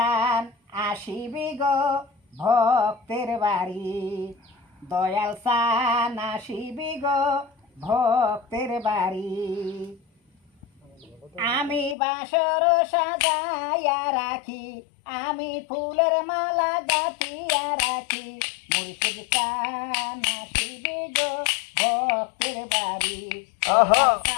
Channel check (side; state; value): right; drops out; at 12.0 s